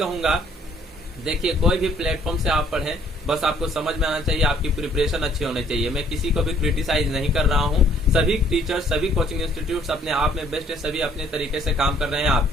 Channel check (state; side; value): normal; both; correlation 0.62